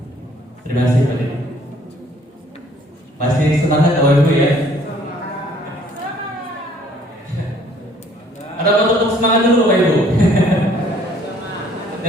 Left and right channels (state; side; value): normal; both; correlation 0.59